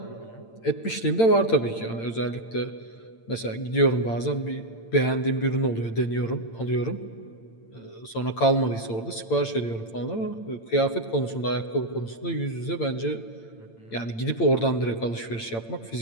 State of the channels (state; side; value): late; right; 8.8 ms